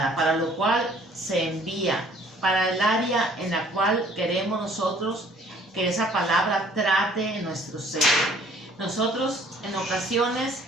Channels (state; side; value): normal; both; correlation 0.57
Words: para lo cual se envía, para el área en la cual queremos nosotros que esa palabra trate en nuestro ser. Nosotros en ocasiones